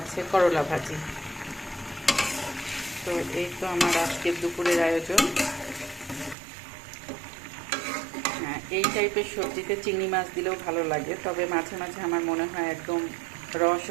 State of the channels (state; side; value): drops out; left; at 6.4 s